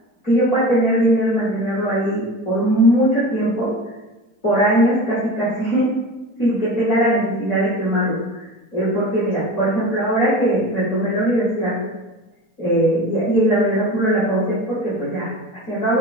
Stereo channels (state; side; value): late; right; 4.3 ms